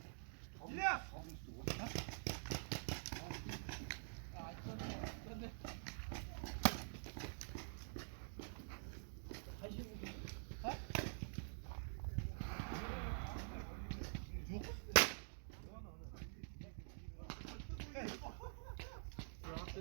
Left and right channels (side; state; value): left; silent; digital silence